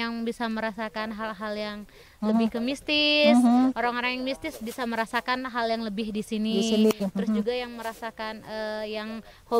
bisa merasakan hal-hal yang lebih ke mistis, orang-orang yang mistis bisa merasakan hal yang lebih di sini. Terus juga yang merasakan yang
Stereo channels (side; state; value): both; identical; correlation 1.00